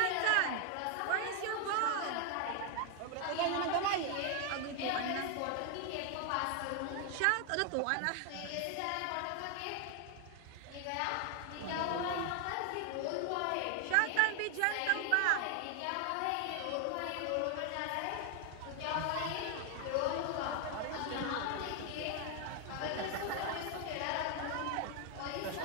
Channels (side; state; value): both; different; correlation 0.01